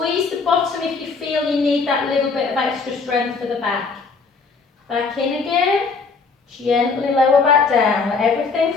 the bottom if you feel you need that little bit of extra strength for the back. Back in again, gently lower back down, let everything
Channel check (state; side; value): quieter; right; 4.6 dB